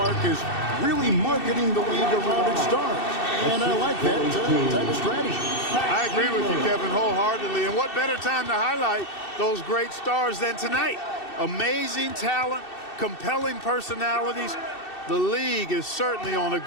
is really marketing the league around its stars. And I like that type of strategy. I agree with you, Kevin, wholeheartedly. And what better time to highlight those great stars than tonight? Amazing talent, compelling personalities. The league is certainly on a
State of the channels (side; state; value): right; late; 2.7 ms